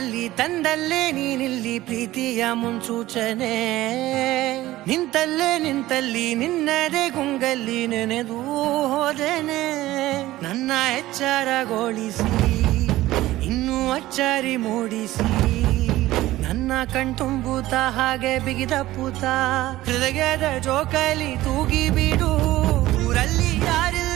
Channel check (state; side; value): quieter; left; 16.3 dB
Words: ತಂದಲ್ಲೇ ನೀನಿಲ್ಲಿ ಪ್ರೀತಿಯ ಮುನ್ಸೂಚನೆ. ನಿಂತಲ್ಲಿ ನಿನ್ನದೇ ಗುಂಗಲ್ಲಿ ನೆನೆದು ಹೋದೆನೆ. ನನ್ನ ಎಚ್ಚರಗೊಳಿಸಿ ಇನ್ನೂ ಅಚ್ಚರಿ ಮೂಡಿಸಿ ನನ್ನ ಕಣ್ತುಂಬುತ್ತ ಹಾಗೆ ಬಿಗಿದಪ್ಪುತ್ತ ಹೃದಯದ ಜೋಕಾಲಿ ತೂಗಿ ಬಿಡು. ಊರಲ್ಲಿ